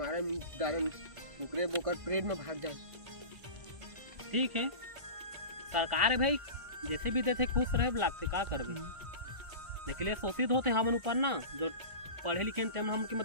दारन ओकरे बोकर परेड में भाग जाए ठीक है सरकार है भाई जैसे भी देते खुश रहे लागते का करबे लेकिन शोषित होते हमन ऊपर ना जो पढ़े लिखे हम की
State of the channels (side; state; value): left; late; 1.5 ms